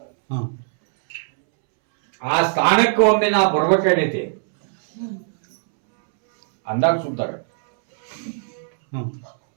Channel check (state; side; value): silent; left; 66 dB below the other